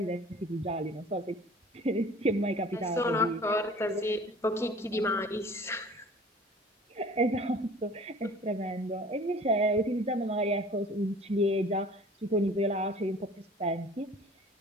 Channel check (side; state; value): both; normal; correlation 0.47